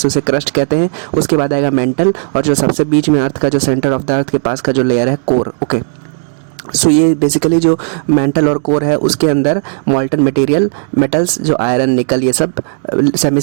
उसे क्रस्ट कहते हैं, उसके बाद आएगा मेंटल, और जो सबसे बीच में अर्थ का जो सेंटर ऑफ द अर्थ के पास का जो लेयर है, कोर। ओके, सो ये बेसिकली जो मेंटल और कोर है उसके अंदर मॉल्टन मटेरियल, मेटल्स जो आयरन, निकल, ये सब सेमी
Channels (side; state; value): left; silent; digital silence